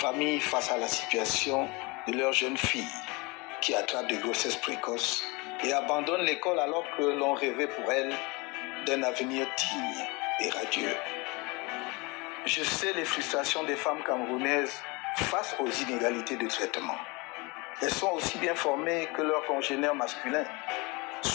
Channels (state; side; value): quieter; right; 26.6 dB